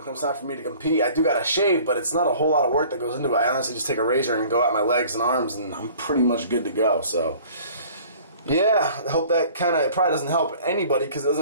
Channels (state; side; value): inverted; both; correlation -0.49